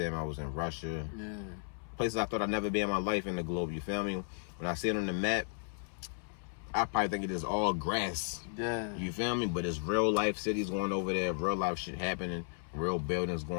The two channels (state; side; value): silent; right; 55 dB below the other